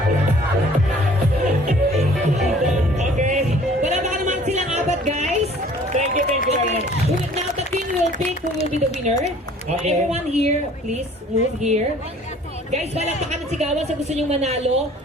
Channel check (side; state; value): both; normal; correlation 0.52